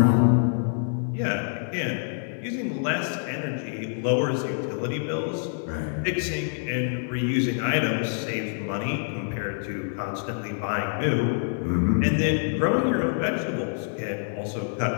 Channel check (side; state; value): right; silent; digital silence